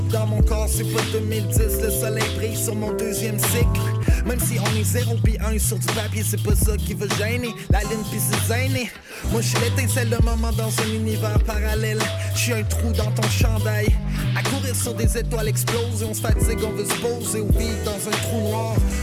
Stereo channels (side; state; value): both; identical; correlation 1.00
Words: dans mon corps, c'est pas 2010. Le soleil brille sur mon deuxième cycle. Même si on est 0 pis 1 sur du papier, c'est pas ça qui va gêner. La ligne pis c'est gêné. Moi je suis l'étincelle de moment dans un univers parallèle. Je suis un trou dans ton chandail. À courir sur des étoiles explosées, on se fatigue, on veut se poser ou vivre dans un trou noir.